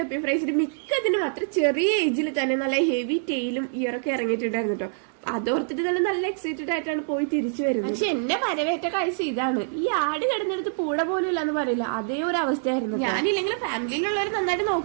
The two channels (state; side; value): silent; left; 61 dB below the other